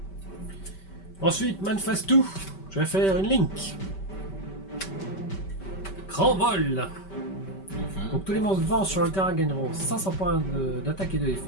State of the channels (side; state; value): right; late; 5.2 ms